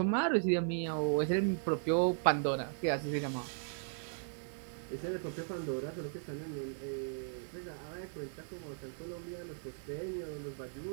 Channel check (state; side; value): silent; left; digital silence